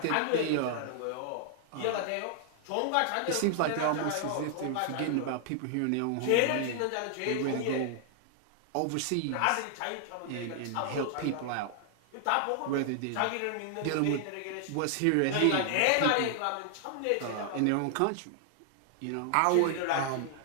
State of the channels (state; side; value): different; both; correlation 0.00